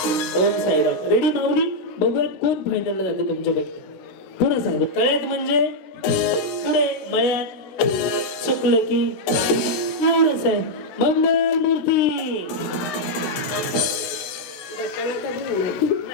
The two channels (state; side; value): late; right; 16 ms